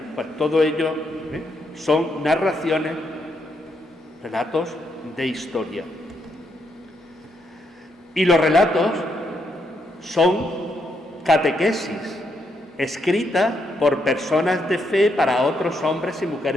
pues todo ello son narraciones, relatos de historia. Y los relatos son catequesis, escritas por personas de fe para otros hombres y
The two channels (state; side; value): normal; both; correlation 0.78